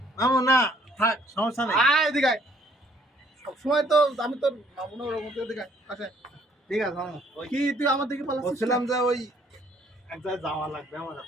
মামু না থাক, সমস্যা নেই, আয় এদিকে আয়। সবসময় তো আমি তোর মামু না, ওরকম এদিকে আয়, আসে। ঠিক আছে মামু। কি তুই আমার দিকে পালাচ্ছিস? বলছিলাম যে ওই এক জায়গায় যাওয়া লাগবে আমার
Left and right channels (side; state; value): both; normal; correlation 0.62